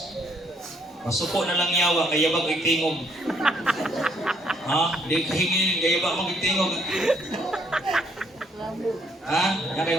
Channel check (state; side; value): normal; both; correlation 0.69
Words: Masuko na lang yawa, kaya bag tingog. Ha? Di kahingin, kaya bag magtingog. Ha? Yan kayo